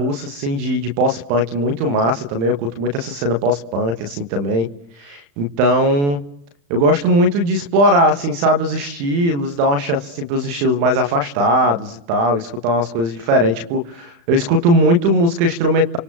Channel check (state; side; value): late; left; 35 ms